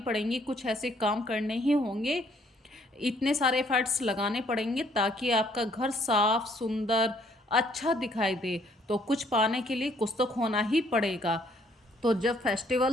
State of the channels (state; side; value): normal; both; correlation 0.64